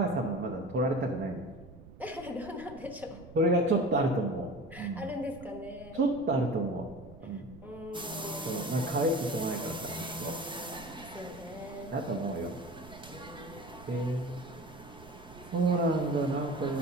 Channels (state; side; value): noise; right; rumble, 18 dB below the sound